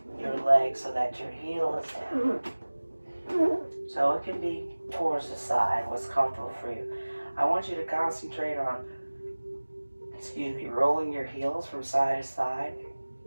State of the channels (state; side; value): inverted; both; correlation -1.00